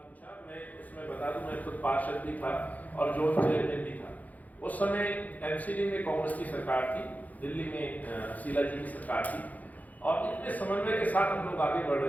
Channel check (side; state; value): right; late; 0.078 ms